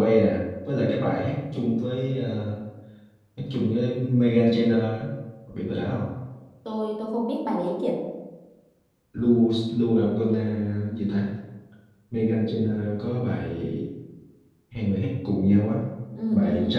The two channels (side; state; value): both; identical; correlation 1.00